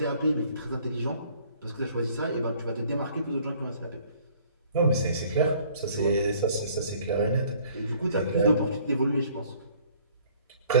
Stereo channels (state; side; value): inverted; both; correlation -0.58